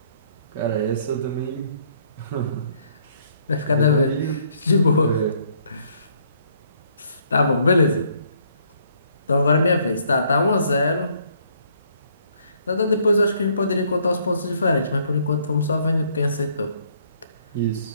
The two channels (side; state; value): both; inverted; correlation -0.66